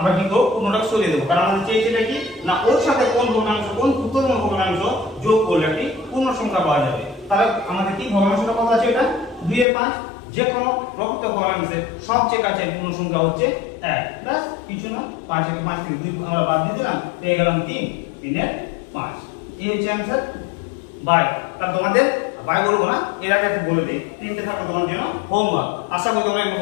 কি করব, পূর্ণটা সরিয়ে দেবো। কারণ আমাদের চেয়েছিটা কি না, ওর সাথে কোন ভগ্নাংশ, কোন ক্ষুদ্রতম ভগ্নাংশ যোগ করলে একটি পূর্ণ সংখ্যা পাওয়া যাবে। তাহলে আমাদের কি ভগ্নাংশটা কত আছে? এটা 2 এর 5। যে কোনো প্রকৃত ভগ্নাংশের সবচেয়ে কাছে পূর্ণ সংখ্যা হচ্ছে 1। ব্যাস, কিছু না। 5 থেকে 5 থেকে 2 আমরা বাদ দিয়ে দিলাম, পেয়ে গেলাম 3। 3 এর 5। এই হচ্ছে आंसर বাই। তাহলে তোমাদের বাই বলবো না, এর আগে একটু বলে দিই, তিনটে থাকবে তোমার জন্য হোমওয়ার্ক। আশা করি তোমরা এগুলো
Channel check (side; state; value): right; drops out; at 9.7 s